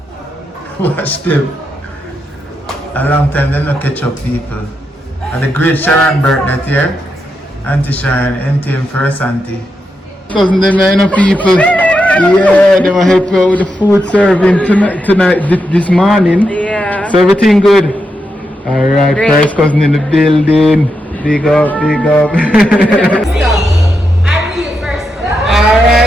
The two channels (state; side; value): normal; both; correlation 0.85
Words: Watch them. A long time they don't catch up people. And the great Sharon birthday here. Auntie Sharon, NTM first auntie. Cousin them, you know, people. Yeah, they will help you out with the food serving tonight, this morning. Yeah. So everything good? Alright, Great. first cousin in the building. Big up, big up.